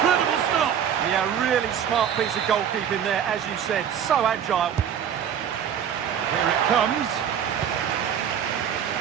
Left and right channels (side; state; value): left; quieter; 8.7 dB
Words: stop. Yeah, really smart piece of goalkeeping there, as you said. So agile. Here it comes.